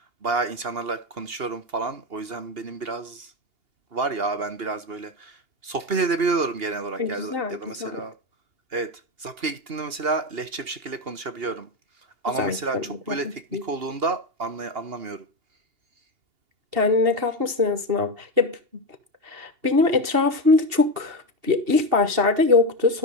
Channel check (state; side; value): late; left; 2.8 ms